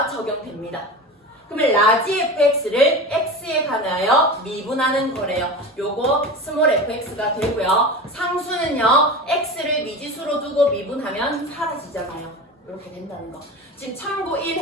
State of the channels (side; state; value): both; normal; correlation 0.29